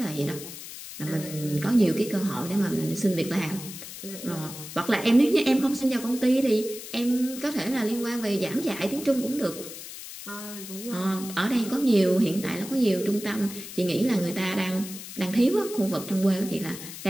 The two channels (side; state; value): left; noise; hiss, 12 dB below the sound